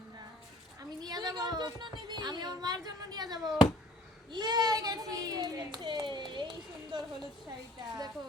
না। আমি নিয়ে যাব, আমি আমার মায়ের জন্য নিয়ে যাব। এই সুন্দর হলুদ শাড়িটা দেখো,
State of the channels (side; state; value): both; normal; correlation 0.52